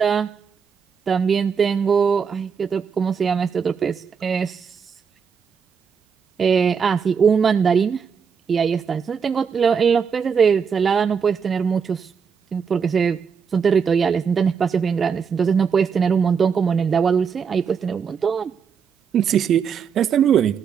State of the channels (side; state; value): left; quieter; 6.5 dB